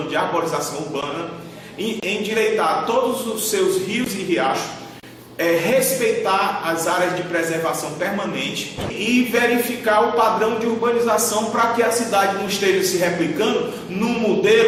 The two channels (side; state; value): both; identical; correlation 1.00